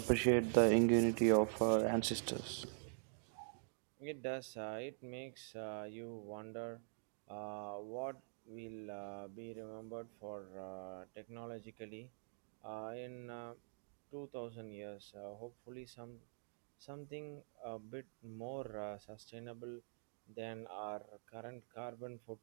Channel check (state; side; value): silent; left; digital silence